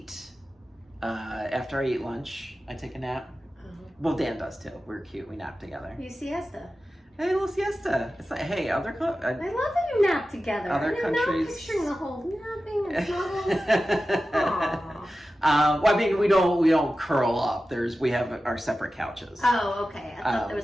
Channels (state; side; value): normal; both; correlation 0.94